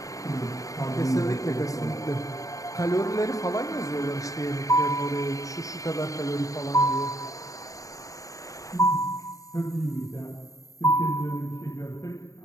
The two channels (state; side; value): late; right; 0.16 ms